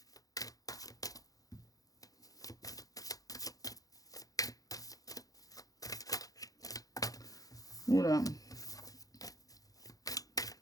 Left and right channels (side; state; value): right; late; 0.17 ms